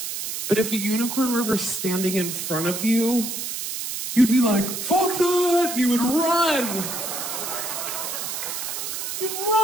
But if a unicorn were ever standing in front of you, you'd be like, fuck that! And you would run. You'd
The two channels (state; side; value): noise; right; hiss, 5 dB below the sound